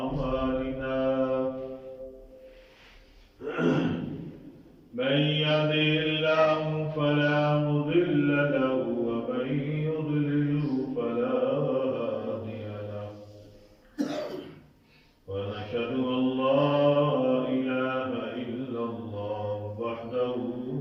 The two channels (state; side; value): identical; both; correlation 1.00